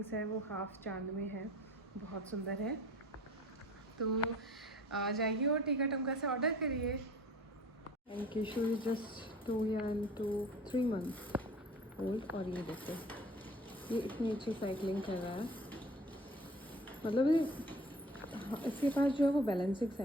हैं वो हाफ चांद में है, बहुत सुंदर है। तो आ जाइए और टीका टमका से ऑर्डर करिए। And Kishore is just 2 and 3 months old. और ये देखो ये इतनी अच्छी साइकिलिंग कर रहा है, मतलब इसके पास जो है वो बैलेंसिंग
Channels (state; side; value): normal; both; correlation 0.46